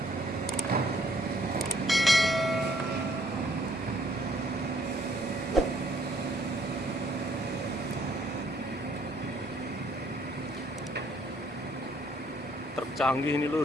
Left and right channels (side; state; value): both; normal; correlation 0.64